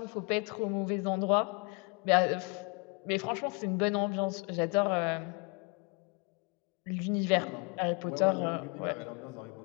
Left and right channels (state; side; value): quieter; right; 31.9 dB